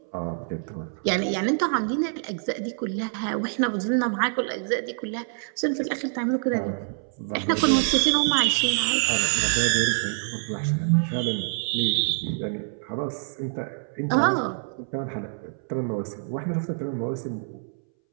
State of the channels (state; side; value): silent; left; 61 dB below the other